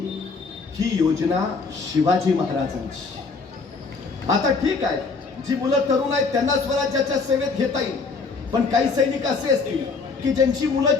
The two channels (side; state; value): right; quieter; 4.5 dB